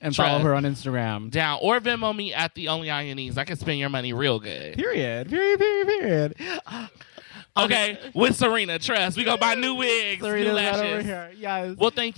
and follow her on Instagram. Down. Or Venmo me at the only Anya. I can spend your money real good. Period. Period. Okay, with Serena, trust. We gonna buy new wigs, Serena's new lashes. right over here. Yes. We'll thank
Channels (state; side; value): silent; right; 62 dB below the other